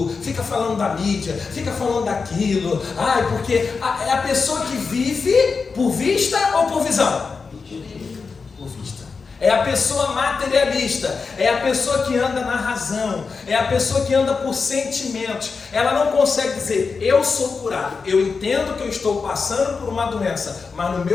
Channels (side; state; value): right; quieter; 4.9 dB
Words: fica falando da mídia, fica falando daquilo. Porque é a pessoa que vive por vista ou por visão? É a pessoa materialista, é a pessoa que anda na razão, é a pessoa que anda por sentimentos. Ela não consegue dizer, eu sou curado, eu entendo que eu estou passando por uma doença, mas no